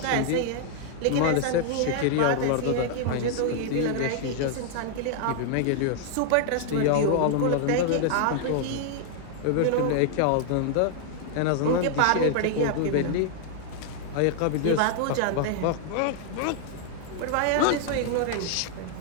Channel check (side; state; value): both; different; correlation 0.00